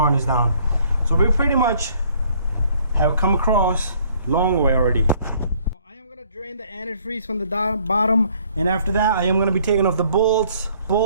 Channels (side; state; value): both; inverted; correlation -0.61